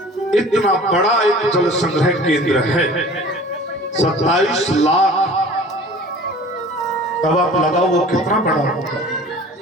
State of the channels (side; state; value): both; normal; correlation 0.44